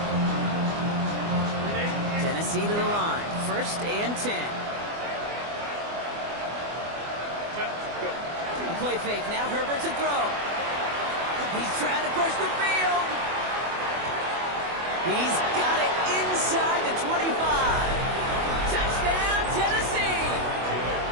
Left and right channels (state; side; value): late; left; 24 ms